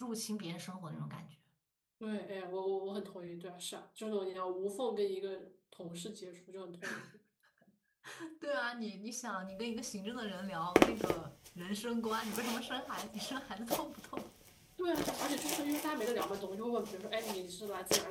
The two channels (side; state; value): both; identical; correlation 1.00